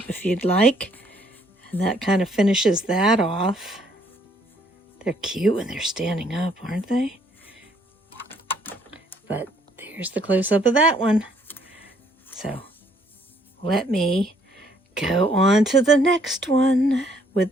if you'd like, and that kind of finishes that off. They're cute when they're standing up, aren't they? But there's the close-up of that one. So let me go on to the next one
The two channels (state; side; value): normal; both; correlation 0.66